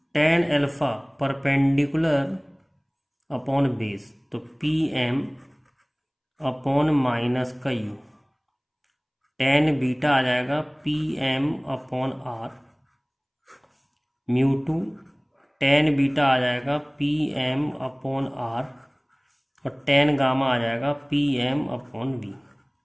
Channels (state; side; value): identical; both; correlation 1.00